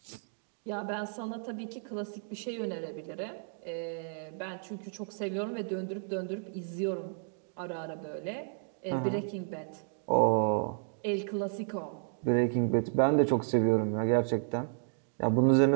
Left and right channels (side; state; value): left; silent; digital silence